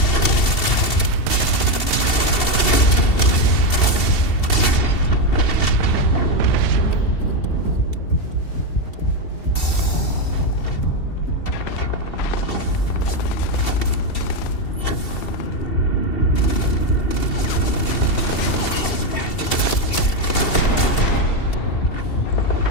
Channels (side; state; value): right; late; 2.7 ms